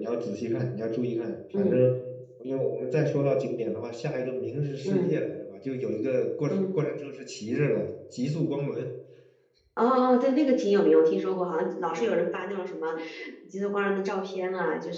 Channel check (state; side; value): identical; both; correlation 1.00